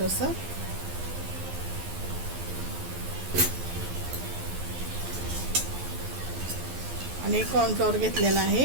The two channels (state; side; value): late; left; 12 ms